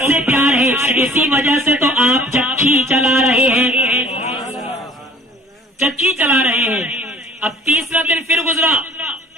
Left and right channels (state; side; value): normal; both; correlation 0.50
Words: سے پیار ہے۔ اسی وجہ سے تو آپ چکی چلا رہے ہیں، چکی چلا رہے ہیں۔ اب تیسرا دن پھر گزرا،